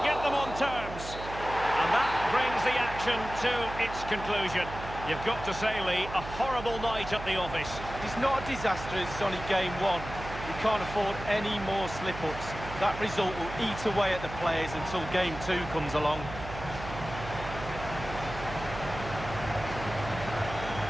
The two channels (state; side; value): noise; right; hum, 10 dB below the sound